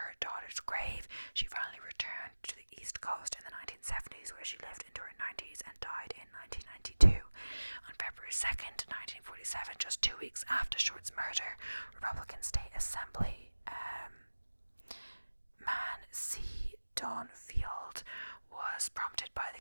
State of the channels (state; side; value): inverted; both; correlation -1.00